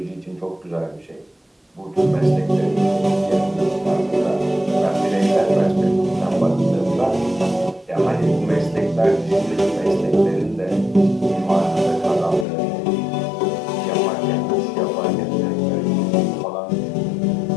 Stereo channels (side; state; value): right; drops out; at 12.5 s